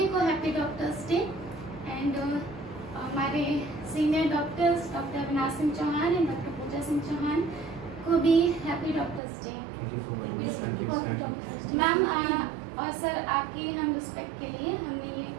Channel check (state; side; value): drops out; left; at 9.2 s